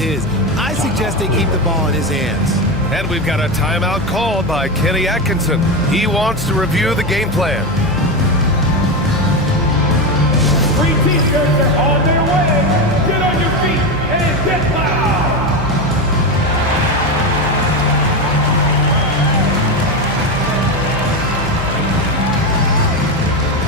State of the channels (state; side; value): noise; left; hum, 10 dB below the sound